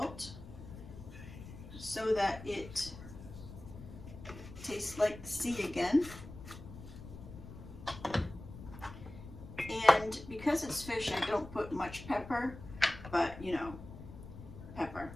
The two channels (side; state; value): left; noise; rumble, 13 dB below the sound